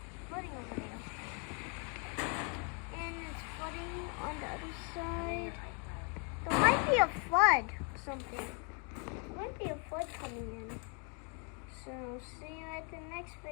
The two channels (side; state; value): right; quieter; 37.2 dB